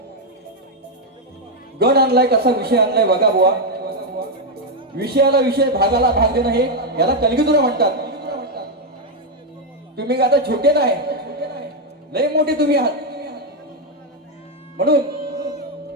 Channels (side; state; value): both; normal; correlation 0.02